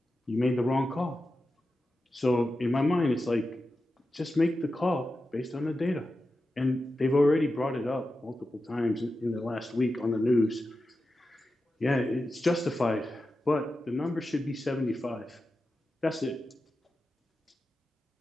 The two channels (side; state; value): both; normal; correlation 0.91